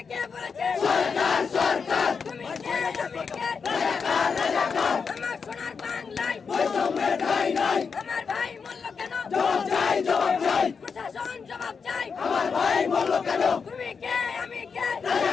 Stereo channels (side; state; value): right; quieter; 5.6 dB